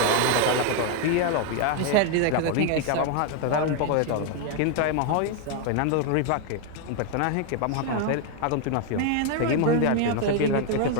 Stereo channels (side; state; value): both; different; correlation 0.00